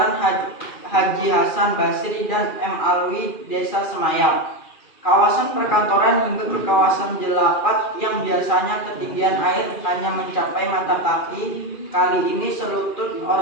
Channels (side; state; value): right; late; 2.4 ms